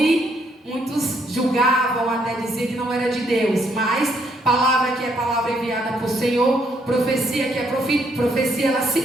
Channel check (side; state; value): both; normal; correlation 0.71